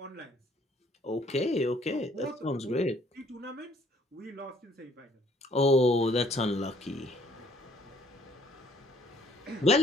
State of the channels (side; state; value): both; normal; correlation 0.62